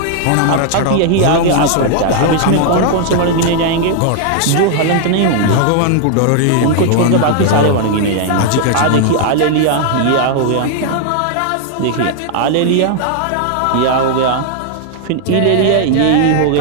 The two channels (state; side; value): different; both; correlation 0.00